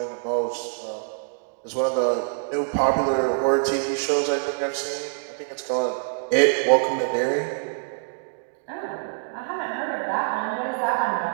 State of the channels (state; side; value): silent; left; digital silence